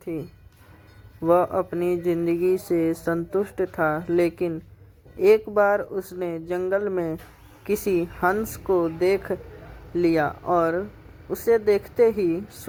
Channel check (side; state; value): both; identical; correlation 1.00